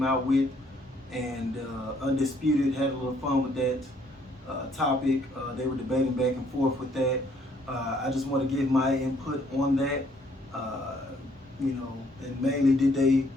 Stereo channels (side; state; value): both; normal; correlation 0.65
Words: out with. And Undisputed had a little fun with that topic. They were debating back and forth with that. I just want to give my input on that. And mainly, did they